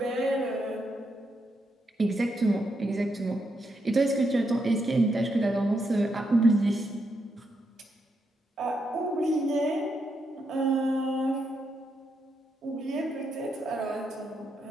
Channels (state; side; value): normal; both; correlation 0.81